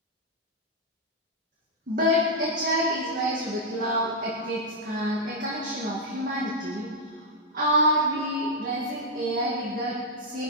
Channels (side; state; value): both; normal; correlation -0.02